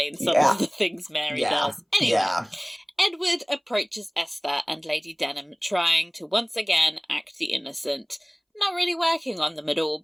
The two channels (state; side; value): identical; both; correlation 1.00